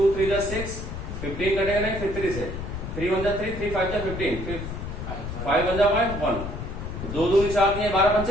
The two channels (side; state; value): left; noise; rumble, 7 dB below the sound